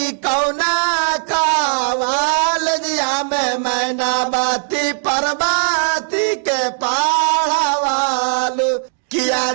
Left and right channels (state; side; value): silent; left; digital silence